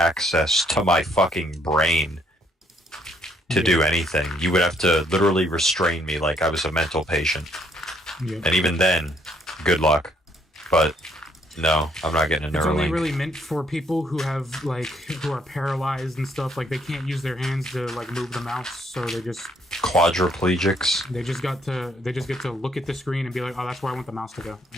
to my fucking brain to do anything. You would have to literally restrain me like I was a mental patient. Yeah. And even then, good luck. But no, I'm not getting a It's only Neuralink. really meant for people who have like who are paralyzed and stuff. Like they can't use their hands to like move the mouse, so they just Quadriplegics. get to look at the screen and be like, oh, that's where I want the mouse to go,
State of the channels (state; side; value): normal; both; correlation 0.67